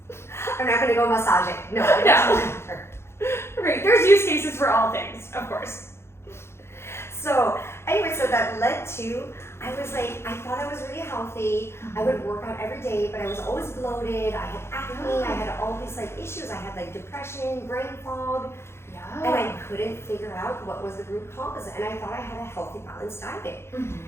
I'm not gonna go massage it. No. Right, there's use cases for all things, of course. So anyway, so that led to, I was like, I thought I was really healthy. I would work out every day, but I was always bloated. I had acne. I had all these like issues. I had like depression, brain fog. And I couldn't figure out what was the root cause. And I thought I had a healthy, balanced diet.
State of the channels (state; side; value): late; right; 0.12 ms